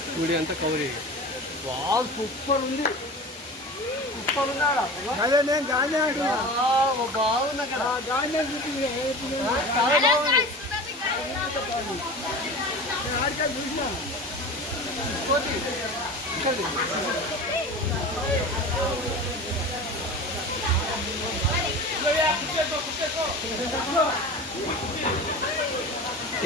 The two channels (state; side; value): normal; both; correlation 0.34